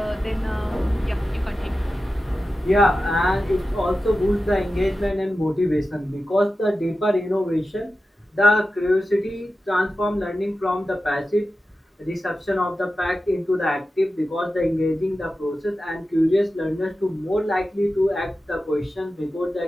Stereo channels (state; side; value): normal; both; correlation 0.93